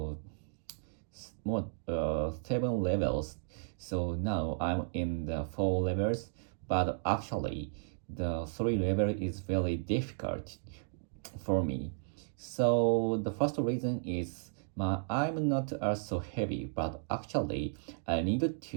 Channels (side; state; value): left; silent; digital silence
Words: more 7 levels. So now I'm in the 4 levels, but actually the 3 level is very difficult for me. So the first reason is I'm not so heavy, but actually I need